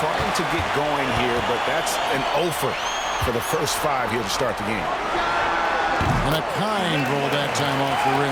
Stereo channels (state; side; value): identical; both; correlation 1.00